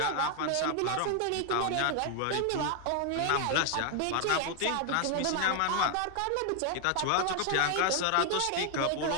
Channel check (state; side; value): different; both; correlation 0.00